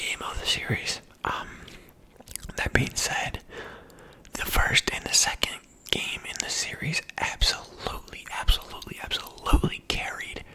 of the series. That being said, the first and the second game in the series absolutely carried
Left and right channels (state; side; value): identical; both; correlation 1.00